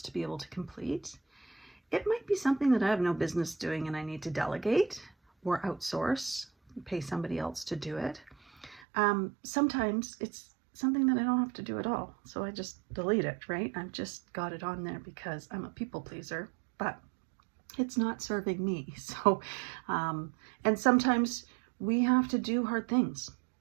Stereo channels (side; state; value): left; drops out; at 8.8 s